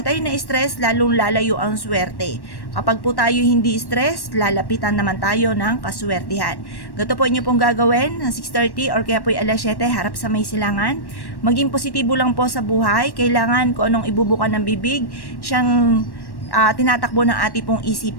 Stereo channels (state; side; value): late; right; 1.1 ms